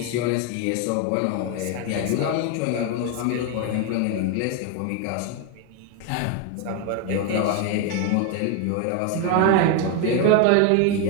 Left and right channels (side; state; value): both; different; correlation 0.01